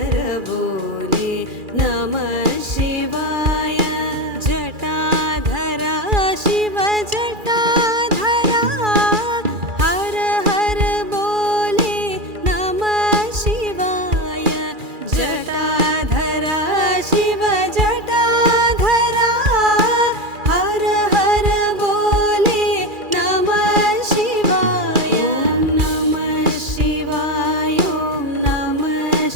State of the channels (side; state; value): left; late; 2.4 ms